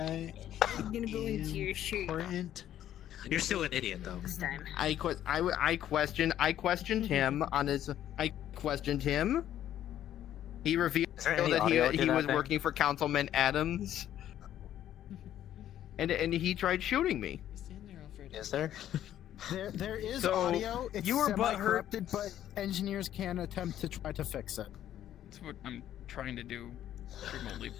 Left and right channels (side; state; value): right; quieter; 11.5 dB